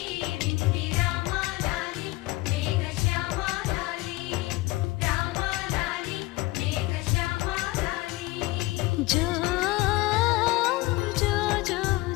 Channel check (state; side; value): quieter; right; 20.4 dB